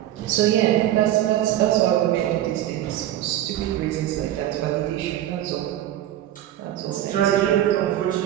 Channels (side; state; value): left; quieter; 12.7 dB